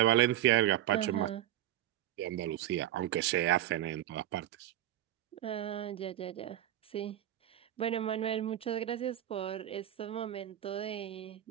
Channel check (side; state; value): left; quieter; 12.9 dB